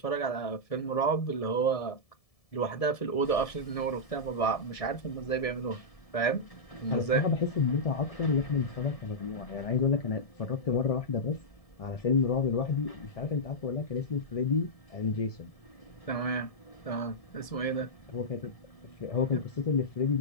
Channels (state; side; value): late; right; 1.7 ms